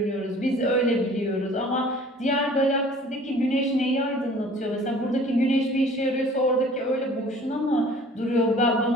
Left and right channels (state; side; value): normal; both; correlation 0.50